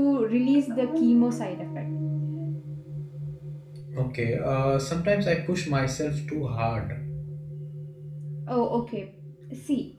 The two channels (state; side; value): identical; both; correlation 1.00